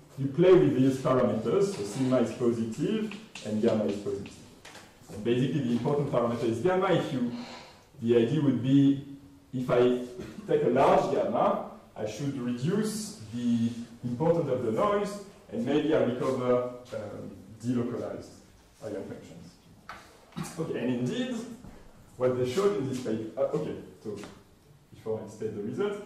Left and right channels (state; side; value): identical; both; correlation 1.00